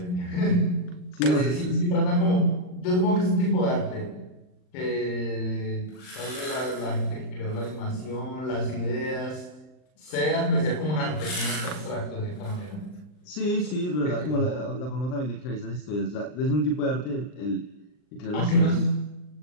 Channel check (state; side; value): late; right; 39 ms